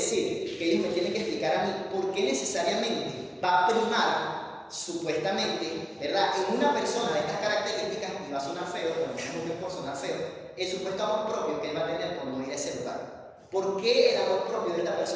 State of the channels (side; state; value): both; identical; correlation 1.00